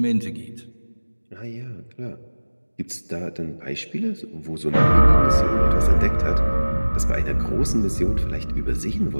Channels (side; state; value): both; inverted; correlation -1.00